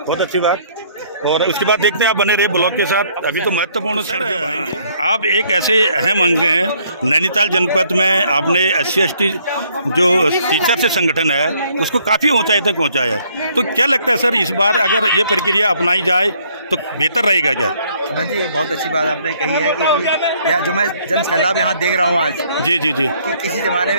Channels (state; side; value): inverted; both; correlation -0.65